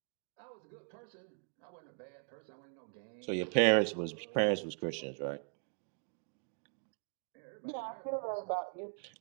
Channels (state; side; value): silent; left; 52 dB below the other